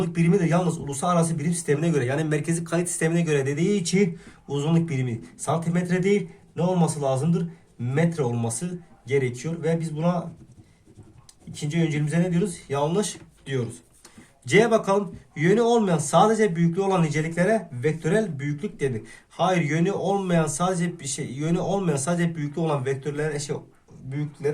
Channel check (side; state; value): both; identical; correlation 1.00